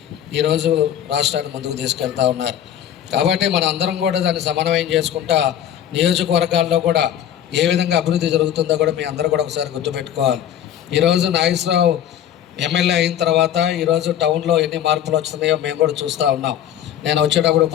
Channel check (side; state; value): right; quieter; 10.4 dB